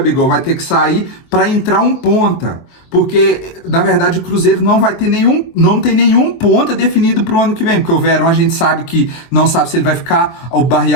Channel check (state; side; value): late; right; 23 ms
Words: vai ter que sair para entrar um ponta. Porque, na verdade, o Cruzeiro não tem nenhum ponta definido para o ano que vem. Porque o Verón a gente sabe que não sabe se ele vai ficar, o